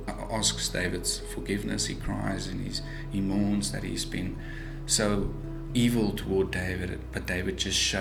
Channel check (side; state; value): both; identical; correlation 1.00